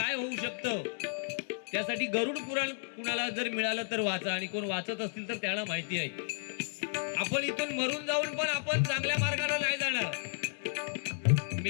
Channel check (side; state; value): right; silent; digital silence